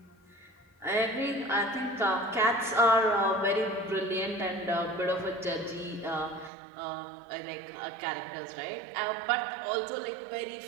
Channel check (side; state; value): left; drops out; at 6.5 s